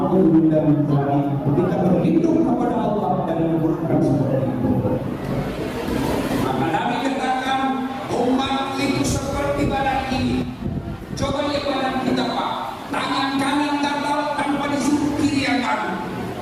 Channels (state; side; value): identical; both; correlation 1.00